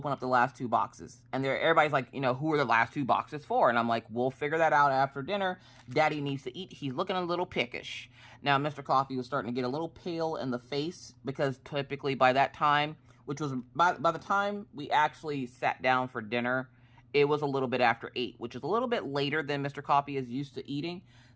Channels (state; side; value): identical; both; correlation 1.00